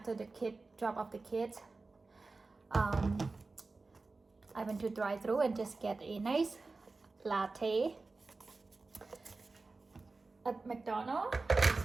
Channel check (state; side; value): quieter; left; 3.7 dB